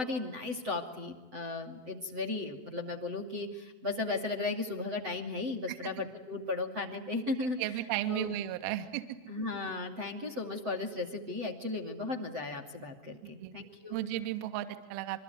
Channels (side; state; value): left; late; 7.9 ms